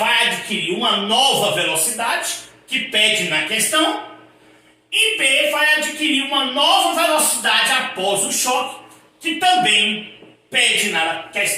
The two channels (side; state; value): both; identical; correlation 1.00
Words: adquirir uma nova velocidade, que pede na questão, e B vai adquirir uma nova velocidade após o choque, que também pede na